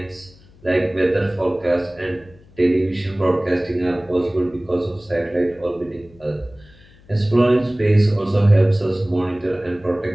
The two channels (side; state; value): left; noise; hum, 26 dB below the sound